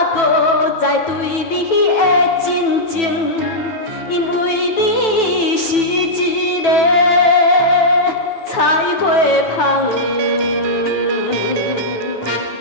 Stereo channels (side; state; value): right; late; 9.1 ms